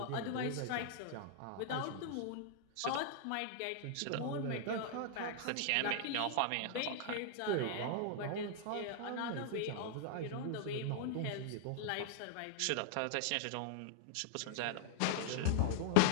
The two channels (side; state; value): both; different; correlation -0.01